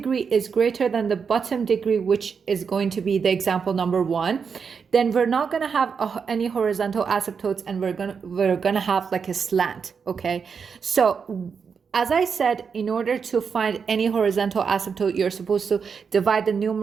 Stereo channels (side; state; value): left; quieter; 6.1 dB